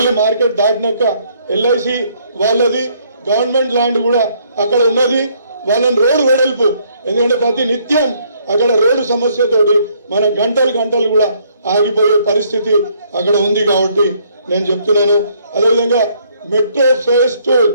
మార్కెట్ దాటినాక ఎల్ఐసి వాళ్ళది గవర్నమెంట్ ల్యాండ్ కూడా అక్కడ ఉన్నది. వాళ్ళని రోడ్డు వెడల్పు, ఎందుకంటే ప్రతి నిత్యం అక్కడ రోడ్డు సమస్యతోటి మన గంటలు కూడా ఆగిపోయే పరిస్థితి అక్కడ ఉంది. కాబట్టి నేను చెప్తున్నాను. అదేవిధంగా మెట్రో ఫేజ్ 2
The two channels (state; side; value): inverted; both; correlation -0.67